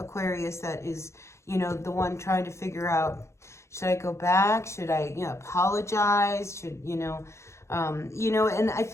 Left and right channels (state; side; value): late; right; 0.14 ms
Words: that is, you know, the one trying to figure out, should I go back? Should I, you know, apologize? Should, you know, and I